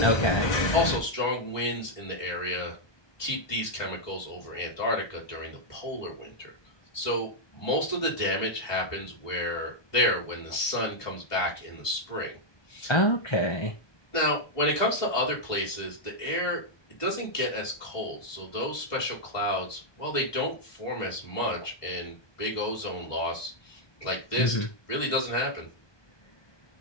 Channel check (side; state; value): right; late; 1.2 ms